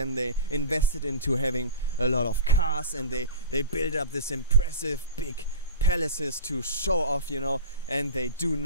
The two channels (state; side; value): inverted; both; correlation -0.32